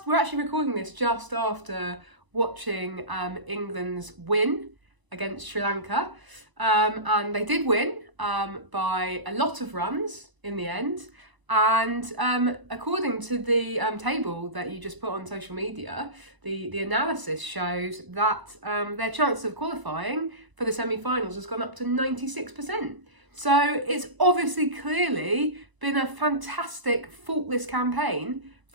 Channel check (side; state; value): left; late; 1.0 ms